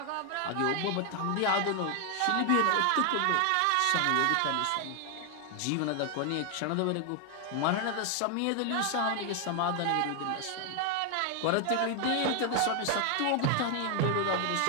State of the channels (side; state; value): both; different; correlation 0.00